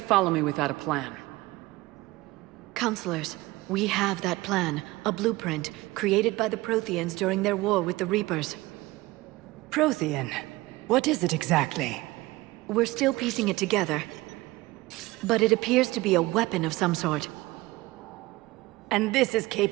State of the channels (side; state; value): left; quieter; 20.0 dB